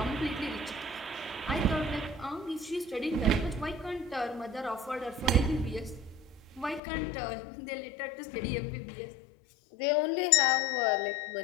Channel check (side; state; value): right; drops out; at 6.8 s